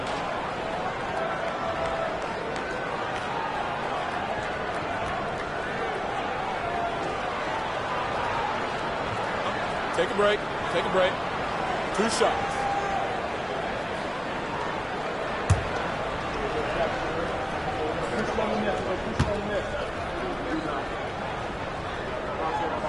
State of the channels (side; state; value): both; identical; correlation 1.00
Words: Take a break. Take a break. 2 shots.